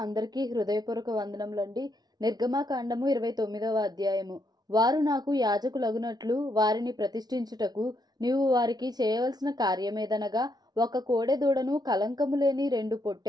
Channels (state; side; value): late; left; 0.19 ms